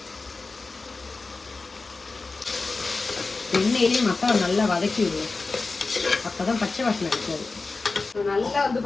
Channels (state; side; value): quieter; right; 3.8 dB